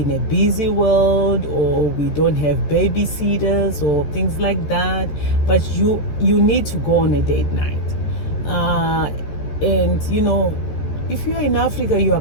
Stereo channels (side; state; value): right; late; 13 ms